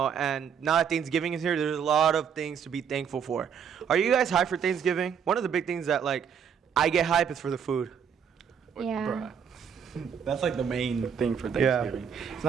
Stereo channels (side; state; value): left; quieter; 7.5 dB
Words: and now that Thanksgiving is here, there's a lot of things to be thankful for. Are you guys hyped for Thanksgiving? One of the big things that, like, I get hype is for the food. Yeah. Bruh. That's like the main thing for Thanksgiving. It's